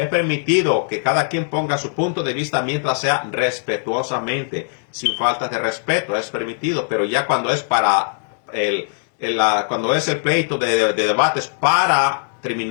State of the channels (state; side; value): silent; right; digital silence